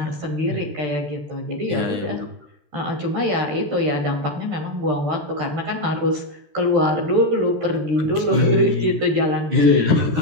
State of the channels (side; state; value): left; late; 13 ms